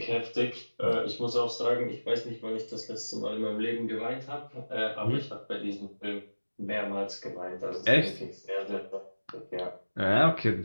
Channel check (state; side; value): inverted; both; correlation -1.00